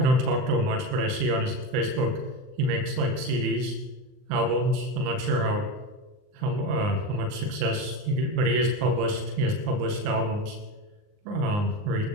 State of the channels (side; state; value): left; late; 39 ms